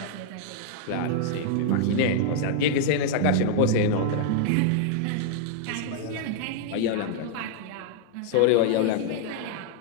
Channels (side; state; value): both; different; correlation -0.01